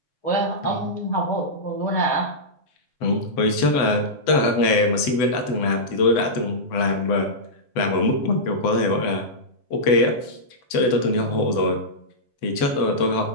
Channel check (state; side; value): late; right; 7.9 ms